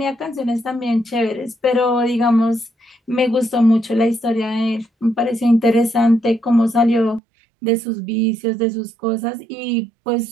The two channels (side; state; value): left; drops out; at 7.2 s